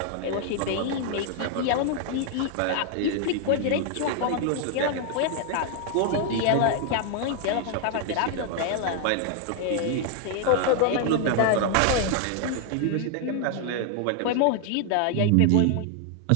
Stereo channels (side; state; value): both; different; correlation 0.00